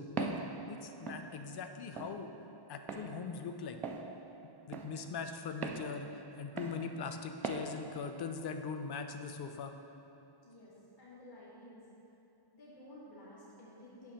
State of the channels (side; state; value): right; late; 1.1 ms